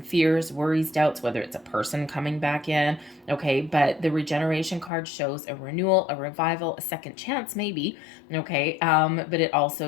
fears, worries, doubts, whether it's a person coming back in, okay, but the regeneration card shows a renewal, a revival, a second chance maybe, okay, but it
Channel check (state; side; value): drops out; right; at 4.9 s